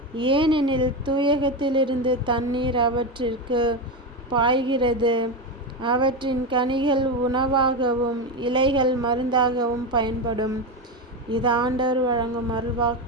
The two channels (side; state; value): both; normal; correlation 0.15